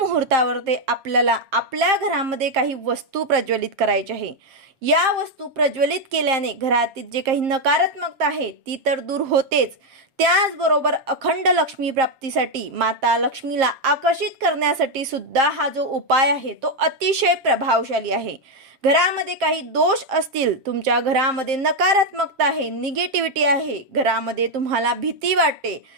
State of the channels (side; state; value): left; late; 7.5 ms